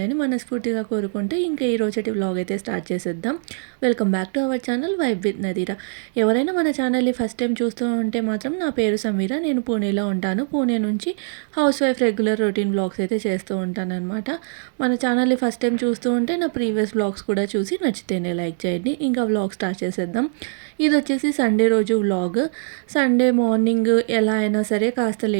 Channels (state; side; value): silent; left; digital silence